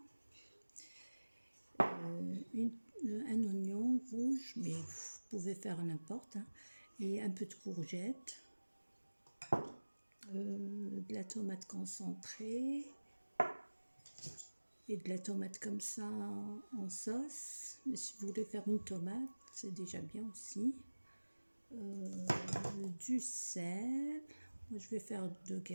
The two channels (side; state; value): both; inverted; correlation -1.00